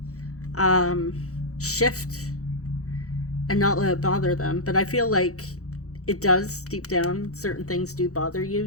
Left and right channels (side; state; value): right; late; 0.65 ms